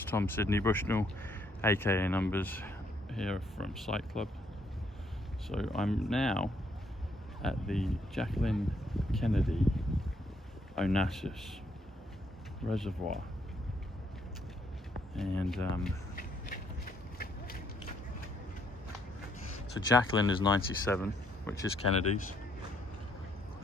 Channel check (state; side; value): normal; both; correlation 0.71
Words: Tom Sydney Bushnell aka Numbers here from Site Club. So I'm now at the Jacqueline Kennedy Onassis Reservoir, and so Jacqueline is 97, which is Kennedy's,